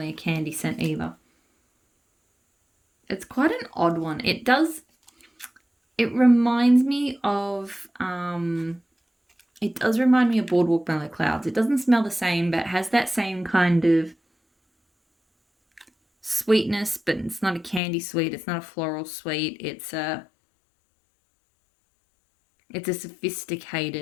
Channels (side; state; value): right; drops out; at 17.8 s